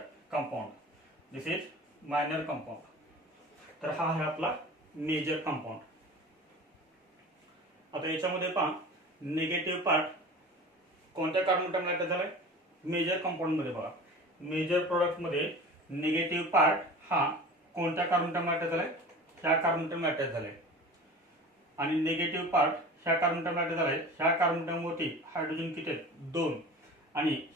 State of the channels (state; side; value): normal; both; correlation 0.37